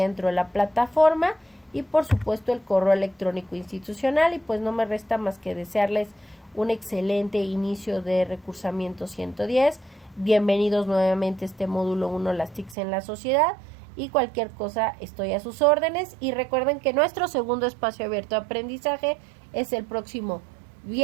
dentro de la plataforma y por supuesto el correo electrónico institucional. Y pues no me resta más que desearles un excelente inicio de recursamiento 110. Bienvenidos nuevamente a este módulo 1, las TICs en la sociedad, y cualquier cosa estoy a sus órdenes. Y recuerden que nuestro segundo espacio abierto de aprendizaje es el próximo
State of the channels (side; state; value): left; drops out; at 12.8 s